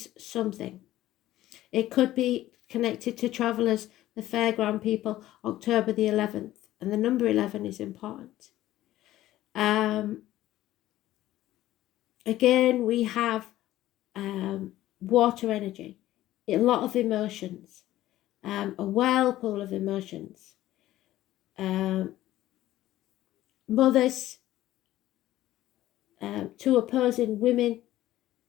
something. It could be connected to travellers, the fairground people, October the 11th, and the number 11 is important. Again, we have water energy, a lot of emotions, a whirlpool of emotions. Mothers, two opposing women,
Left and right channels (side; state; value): right; quieter; 14.8 dB